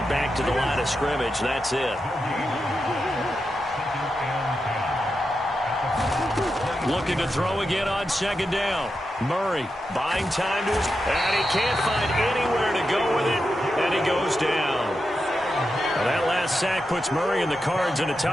back to the line of scrimmage. That's it. Looking to throw again on 2nd down. Murray buying time to his... And he can't find anywhere to go with it. And he goes down. Now that last sack puts Murray and the Cards in a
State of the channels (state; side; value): normal; both; correlation 0.88